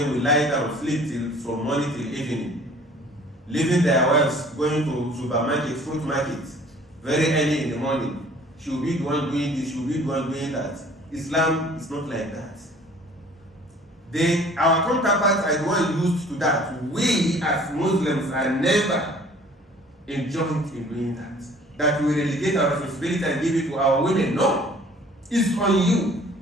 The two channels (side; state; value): both; normal; correlation 0.52